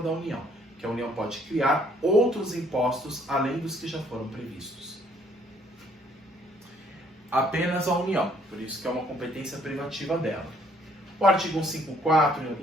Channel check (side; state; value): both; normal; correlation 0.64